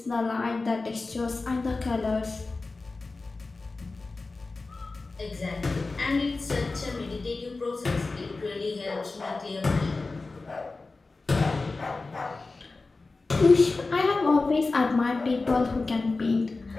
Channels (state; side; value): quieter; right; 3.6 dB